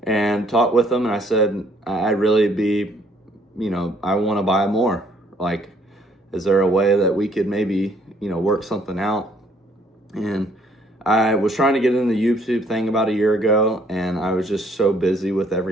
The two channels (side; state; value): both; normal; correlation 0.64